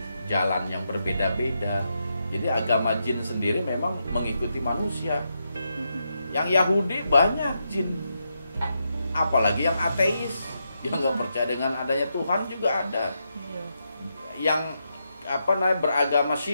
jalan yang berbeda-beda. Jadi agama jin sendiri memang mengikuti manusia. Yang Yahudi banyak jin. Apalagi yang ateis, yang nggak percaya dengan adanya Tuhan juga ada. Iya. Yang beragama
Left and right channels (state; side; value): inverted; both; correlation -0.83